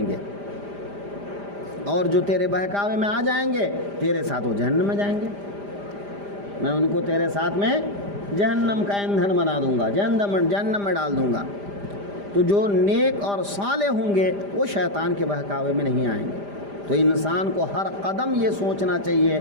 گے، اور جو تیرے بہکاوے میں آ جائیں گے تیرے ساتھ وہ جہنم میں جائیں گے، میں ان کو تیرے ساتھ میں جہنم کا ایندھن بنا دوں گا، جہنم میں ڈال دوں گا۔ تو جو نیک اور صالح ہوں گے وہ شیطان کے بہکاوے میں نہیں آئیں گے۔ تو انسان کو ہر قدم یہ سوچنا چاہیے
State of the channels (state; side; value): late; left; 5.0 ms